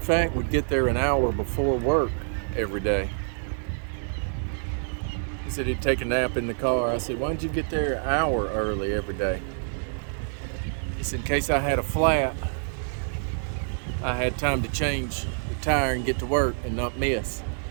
would get there an hour before work every day. He said he'd take a nap in the car. I said, "Why don't you get there an hour early every day?" He said, "In case I had a flat, I had time to change the tire and get to work and not miss."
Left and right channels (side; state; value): left; silent; 60 dB below the other